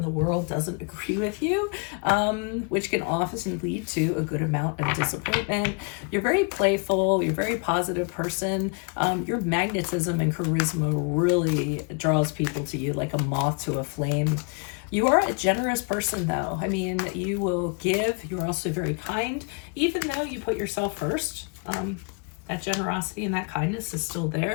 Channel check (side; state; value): right; quieter; 36.5 dB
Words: the world doesn't agree with you, which can often lead to a good amount of disappointment. You're very playful. You're a very positive person. Your magnetism and charisma really draws people to you like a moth to a flame. You are a generous person, though. I mean, you will give. You're also very kind, even though you put yourself first. That generosity and that kindness is still